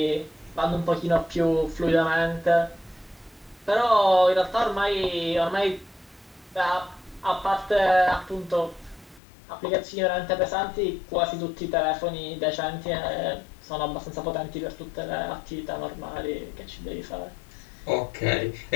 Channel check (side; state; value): right; drops out; at 9.2 s